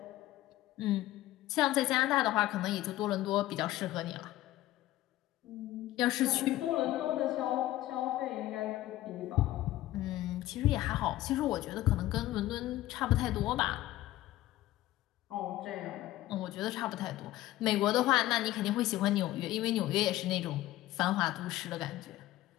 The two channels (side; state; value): right; quieter; 15.6 dB